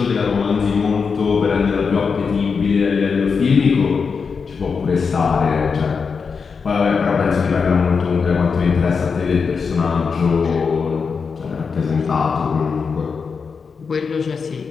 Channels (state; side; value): quieter; right; 5.5 dB